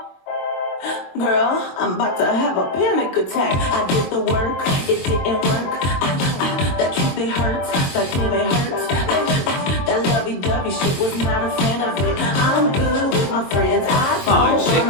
Girl, I'm about to have a panic attack. I did the work, it didn't work. That truth, it hurts, that feeling it hurts. That lovey-dovey shit was not a fan of it. I'm good with my friends, I don't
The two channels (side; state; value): right; late; 22 ms